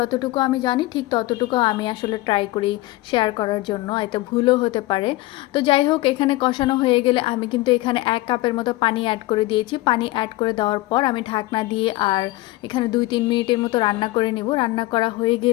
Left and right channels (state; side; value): quieter; right; 19.0 dB